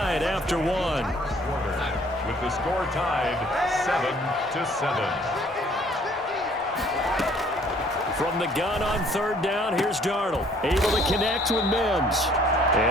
after one. with the score tied 7-7. From the gun on 3rd down, here's Darnold. Able to connect with Mims.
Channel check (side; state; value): both; normal; correlation 0.59